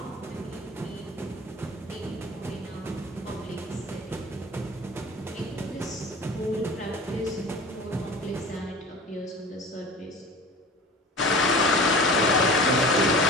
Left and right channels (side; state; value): both; normal; correlation 0.39